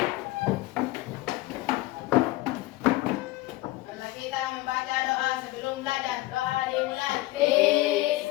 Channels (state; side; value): quieter; right; 18.0 dB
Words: Marilah kita membaca doa sebelum belajar. Doa dimulai.